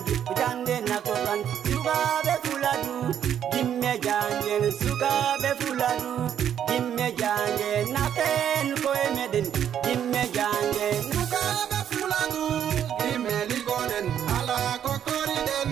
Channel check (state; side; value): quieter; left; 9.5 dB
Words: ko jande naptortan sukabe fuladu gimme jangel sukabe fuladu gimme jangel naten ko emeden gimme jangel sukabe fuladu gimme liggoden ala ko koriden